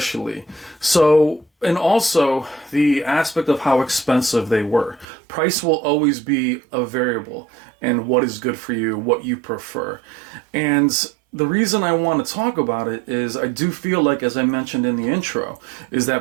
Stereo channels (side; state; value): left; drops out; at 5.1 s